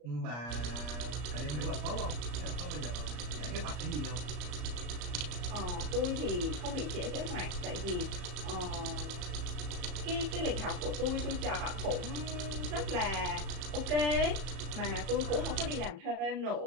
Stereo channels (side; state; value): left; late; 34 ms